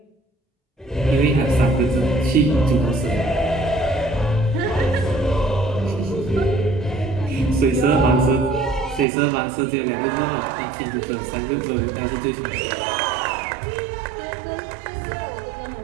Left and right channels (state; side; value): drops out; left; at 9.1 s